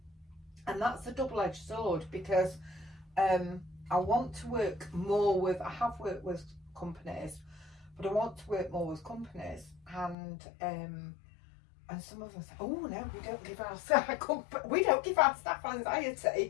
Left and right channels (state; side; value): drops out; right; at 10.2 s